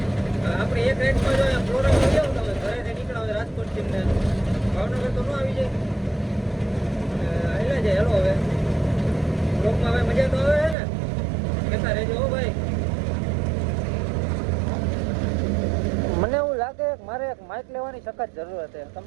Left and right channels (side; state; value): left; drops out; at 10.8 s